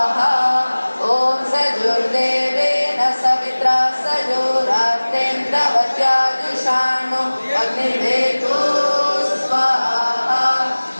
सजुर्देवेन सवित्रा सजोरात्रेन्द्रवत्याजुषाणो अग्निवेदो स्वाहा।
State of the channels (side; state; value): both; inverted; correlation -1.00